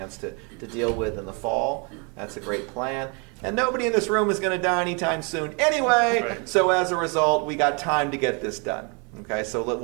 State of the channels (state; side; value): quieter; left; 33.9 dB